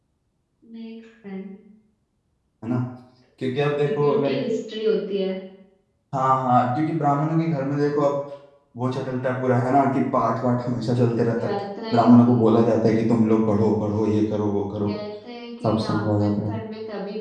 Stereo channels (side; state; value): both; identical; correlation 1.00